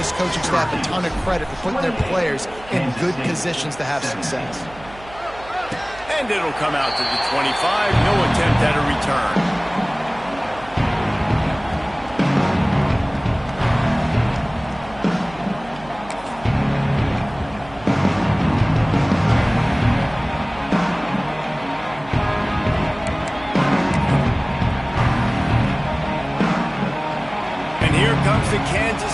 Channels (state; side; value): noise; right; hum, 20 dB below the sound